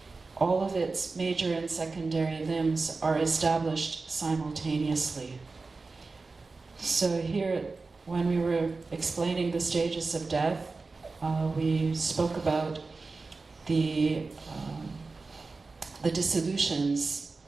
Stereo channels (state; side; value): quieter; left; 3.9 dB